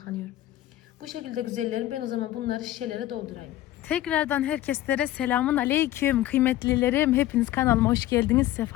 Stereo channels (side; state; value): right; quieter; 14.6 dB